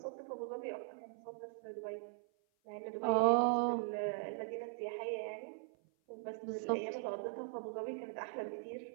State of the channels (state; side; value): silent; left; 51 dB below the other